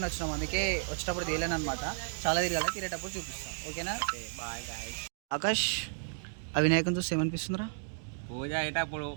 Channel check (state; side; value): silent; left; digital silence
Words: వచ్చినాము. అందుకే వచ్చేటప్పుడు తీయలేను అనమాట. చాలా తిరగాలి, తిరిగేటప్పుడు చూపిస్తాం. ఓకేనా? Bye guys. ఆకాష్, ఆ వినాయకుని చూస్తే ఏమనిపిస్తుందిరా? పూజ అయ్యేటప్పుడు